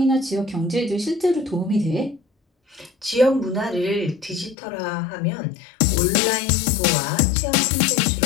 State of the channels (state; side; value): drops out; right; at 4.5 s